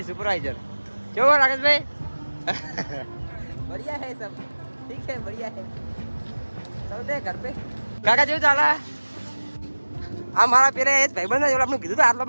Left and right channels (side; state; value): both; inverted; correlation -1.00